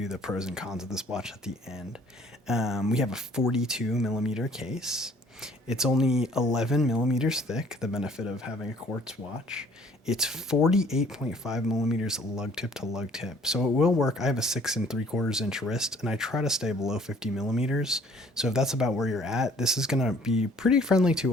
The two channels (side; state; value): both; normal; correlation 0.57